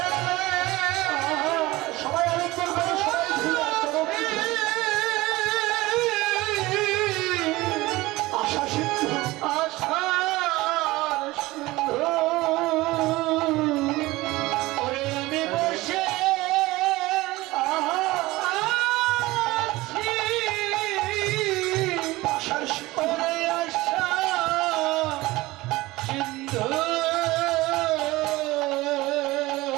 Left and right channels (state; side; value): quieter; left; 19.6 dB